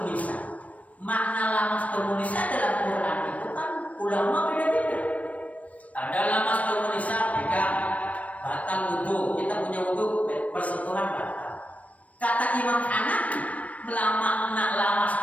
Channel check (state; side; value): late; right; 0.067 ms